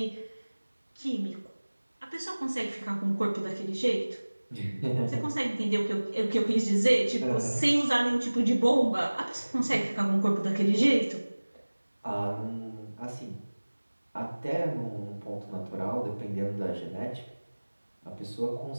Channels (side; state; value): both; inverted; correlation -1.00